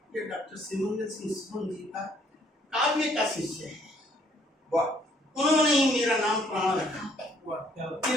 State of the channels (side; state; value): both; normal; correlation 0.65